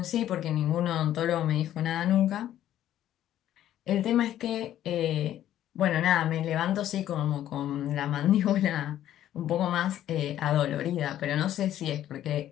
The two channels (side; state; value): right; quieter; 12.0 dB